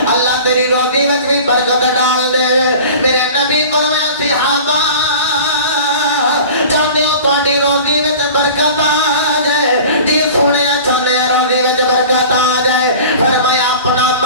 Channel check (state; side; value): inverted; both; correlation -0.40